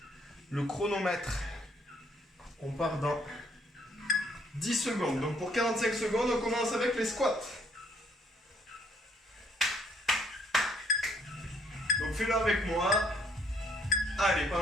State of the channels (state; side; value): normal; both; correlation 0.66